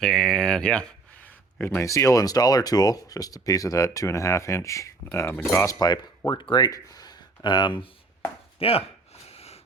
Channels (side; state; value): left; quieter; 3.7 dB